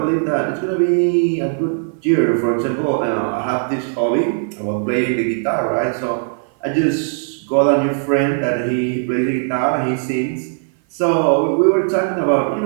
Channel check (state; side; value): silent; left; 57 dB below the other